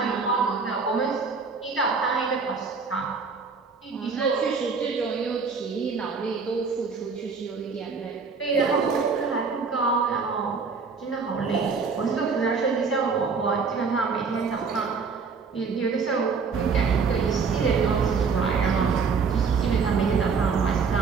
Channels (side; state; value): left; quieter; 5.1 dB